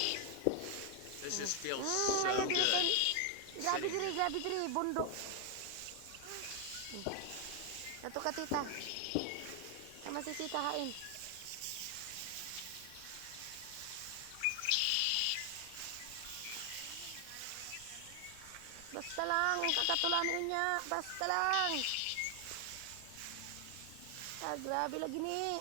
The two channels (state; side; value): different; both; correlation 0.00